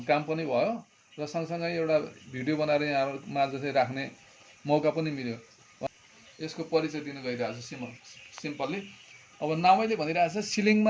काम पनि भयो र सँगसँगै एउटा भिडियो बनाएर यहाँहरूमा चाहिँ राख्ने मौका पनि मिल्यो। यसको परिचय दिन गइरहेको छु सिम्पल्ली। अब नामैले भनिरहेको छ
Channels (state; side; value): identical; both; correlation 1.00